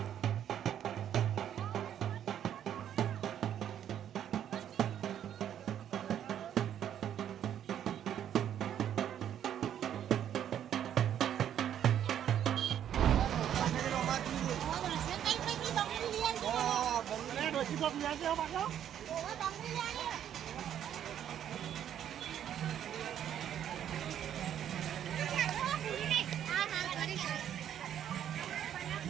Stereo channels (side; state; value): left; quieter; 10.0 dB